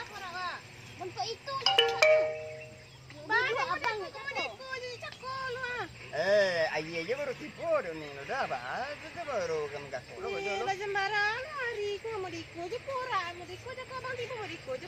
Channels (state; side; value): identical; both; correlation 1.00